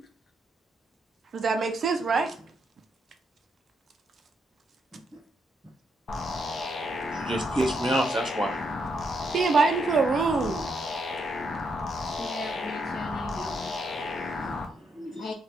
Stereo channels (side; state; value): both; normal; correlation 0.78